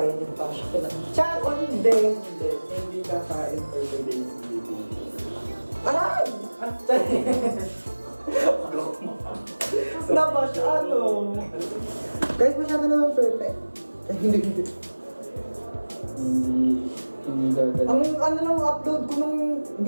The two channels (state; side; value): inverted; both; correlation -1.00